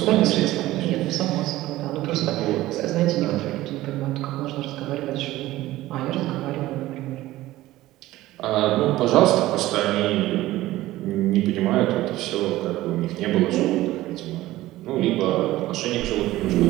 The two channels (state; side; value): quieter; left; 16.5 dB